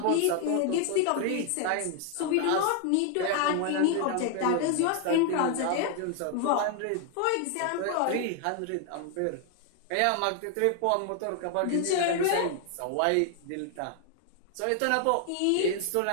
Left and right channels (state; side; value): different; both; correlation 0.00